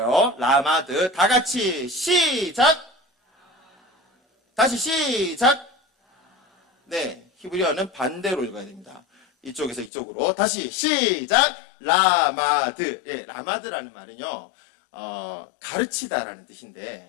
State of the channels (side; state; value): right; drops out; at 9.9 s